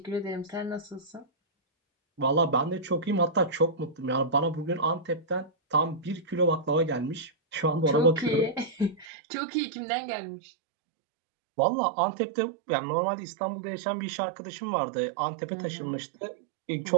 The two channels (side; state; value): left; drops out; at 9.1 s